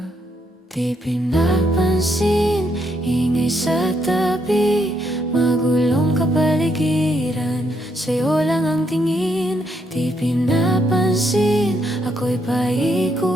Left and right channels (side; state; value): both; normal; correlation 0.75